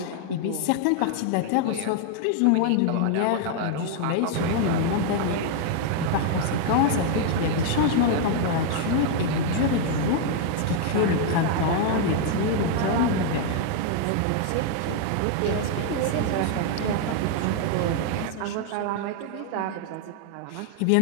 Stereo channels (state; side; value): different; both; correlation 0.00